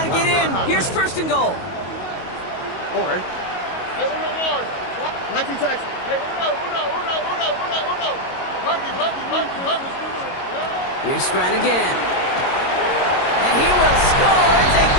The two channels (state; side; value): late; right; 22 ms